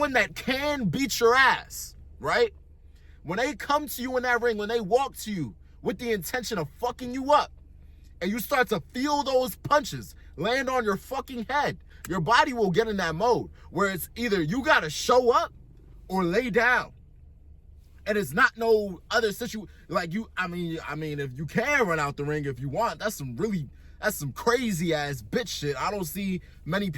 that can beat your ass, right? When they come to you in that ring, when they walk to you with the intention of fucking you up, and you start to feel those punches land on your fucking head, your body will get in that mode where it's either you gotta show up or lay down. And it's not no other situation like you. I mean, if you can run out the ring if you want, that's some crazy ass bitch shit. I don't see many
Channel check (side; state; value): both; identical; correlation 1.00